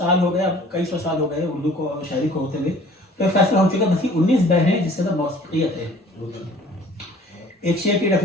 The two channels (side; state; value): both; normal; correlation 0.51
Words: हो गए, अब कई सौ साल हो गए उर्दू को शायरी को होते हुए. तो फैसला हो चुका है बस 19 बहरें हैं जिसके अंदर मौसीकियत है. एक शेर की